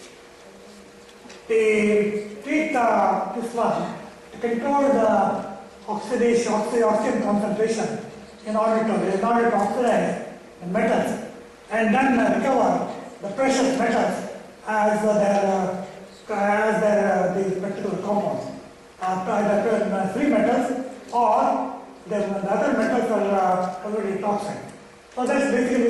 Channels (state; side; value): identical; both; correlation 1.00